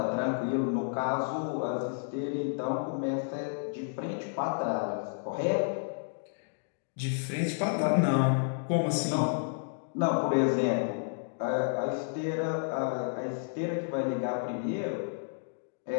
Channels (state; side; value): silent; right; digital silence